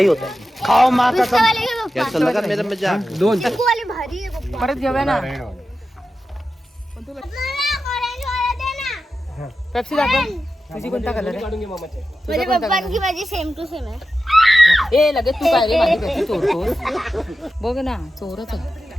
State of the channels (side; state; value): both; normal; correlation 0.92